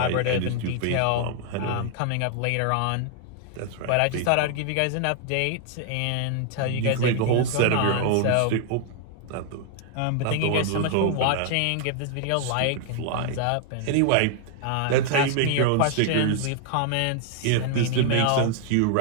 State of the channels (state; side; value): different; both; correlation 0.00